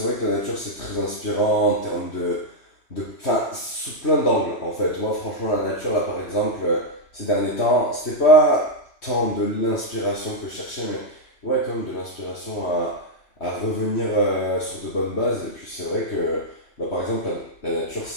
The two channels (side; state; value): right; late; 3.1 ms